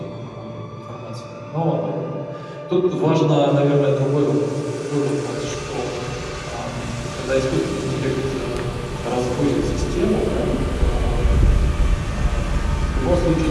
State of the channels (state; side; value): identical; both; correlation 1.00